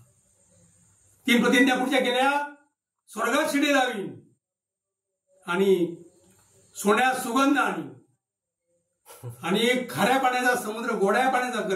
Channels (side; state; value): both; identical; correlation 1.00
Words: 3 प्रतिज्ञा पुढच्या केल्या. स्वर्गात शिडी लावीन आणि सोन्यात सुगंध आणि खाऱ्या पाण्याचा समुद्र गोड्या पाण्याचा